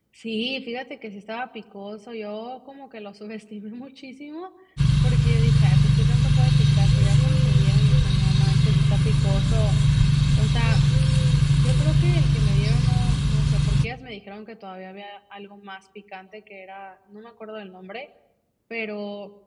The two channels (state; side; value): identical; both; correlation 1.00